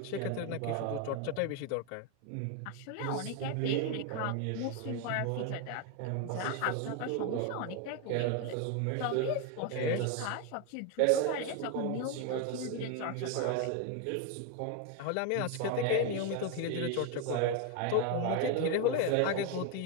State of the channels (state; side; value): different; both; correlation 0.01